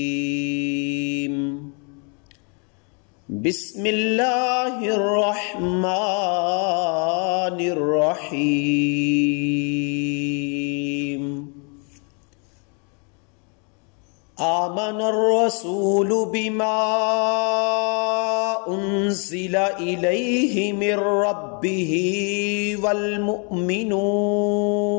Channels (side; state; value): right; quieter; 37.2 dB